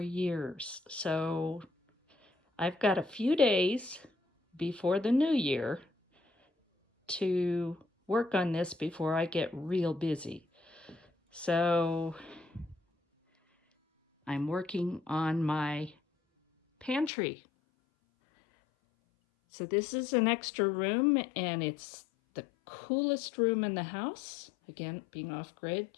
years. So I've got a few days before the new year to work on this before I get real busy. So I'm working on my pantry. So this is an extra room, and it's the coolest room in the house. Again, being off-grid,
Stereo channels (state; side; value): drops out; right; at 17.1 s